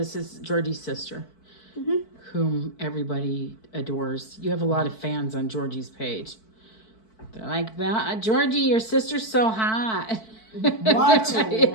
is Georgie's sister, whom everybody adores. You have a lot of fans on Georgie's page. They're like, Georgie, your sister's so hot. What?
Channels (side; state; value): right; late; 4.6 ms